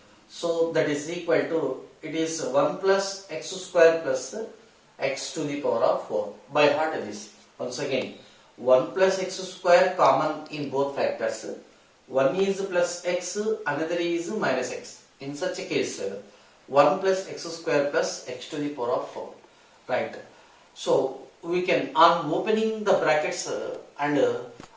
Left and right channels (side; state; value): both; identical; correlation 1.00